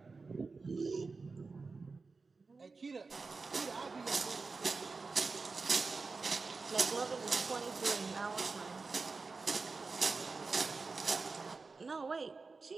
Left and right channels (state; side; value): quieter; left; 4.2 dB